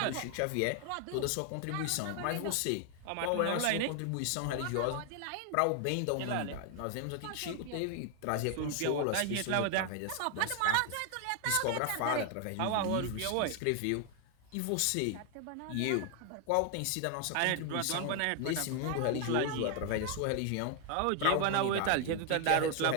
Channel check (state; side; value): different; both; correlation 0.00